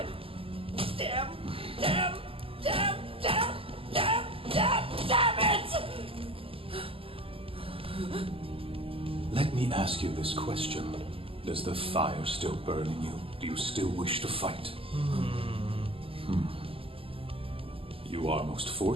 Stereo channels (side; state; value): left; late; 0.26 ms